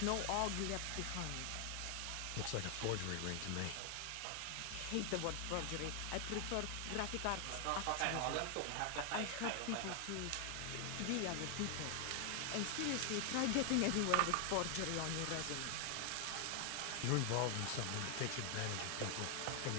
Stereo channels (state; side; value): different; both; correlation 0.00